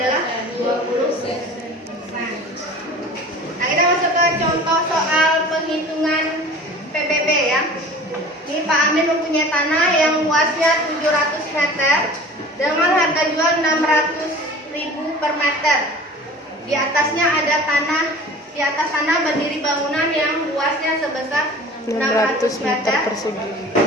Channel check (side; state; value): both; normal; correlation 0.41